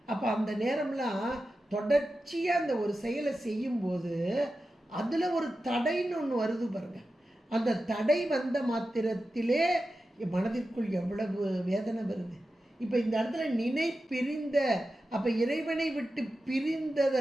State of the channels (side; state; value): both; normal; correlation 0.92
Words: அப்போ அந்த நேரம்லாம் தொடர்ச்சியாக அந்த ஒரு செயலை செய்யும்போது அதில் ஒரு தடைன்னு ஒன்று வருது பாருங்கள். அந்த தடை வந்த மாத்திரத்திலே மனதிற்குள் எவ்வளவு வேதனை வருது. இப்போ இந்த இடத்துல நினை பிரிந்த, அப்போ இறைவனை விட்டு